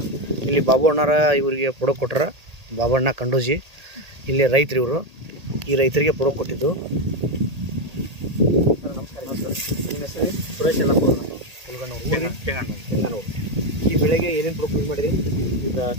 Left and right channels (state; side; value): late; left; 1.8 ms